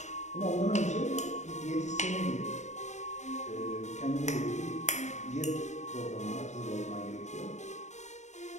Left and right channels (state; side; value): late; right; 0.34 ms